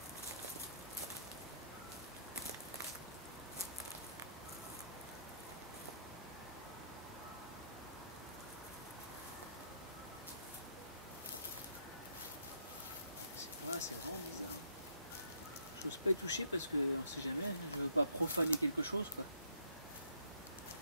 Voilà, c'est vraiment bizarre. J'ose pas y toucher parce que on sait jamais, je veux pas profaner quelque chose quoi.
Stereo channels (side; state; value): both; inverted; correlation -0.68